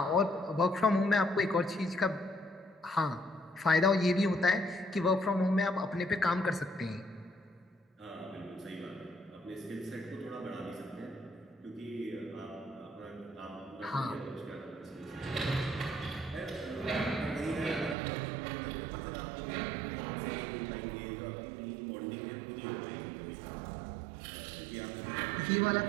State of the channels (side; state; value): left; drops out; at 17.9 s